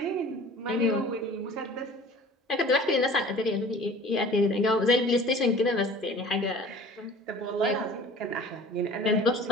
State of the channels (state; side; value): normal; both; correlation 0.45